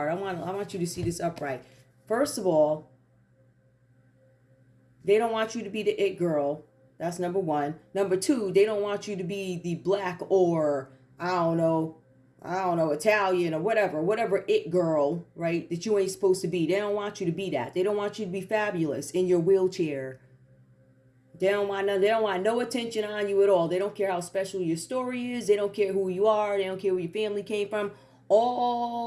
I want you to see this upright. First of all, they don't want you to be the it girl. That's number one. Number two, they don't want you to be the black or I don't know, Italian or whatever it girl, right? That you ain't supposed to be. They don't want you to be that. They don't want you to be fabulous in your wheelchair. They don't want no attention on you at all. They don't care how special your story is. They don't care who you are. They don't care where your family came from.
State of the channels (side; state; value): both; identical; correlation 1.00